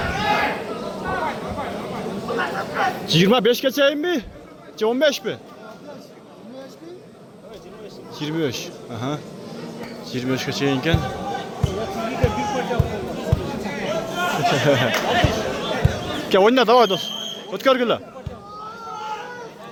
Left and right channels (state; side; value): identical; both; correlation 1.00